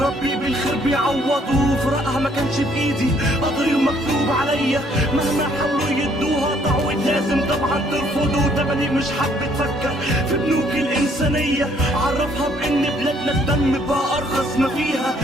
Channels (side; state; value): both; normal; correlation 0.64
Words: بالخير بيعوضه، فراقها ما كانش بايدي قدري ومكتوب عليا، مهما حاولوا يدوها تعويض لازم طبعا ترفضه. تمني مش حابة تفكر في بنوك الانسانية، عرفها بان بلادنا الدم بقى ارخص ما فيها،